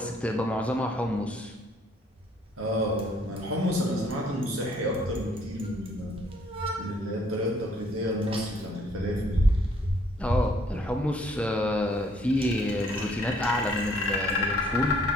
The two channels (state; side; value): normal; both; correlation 0.63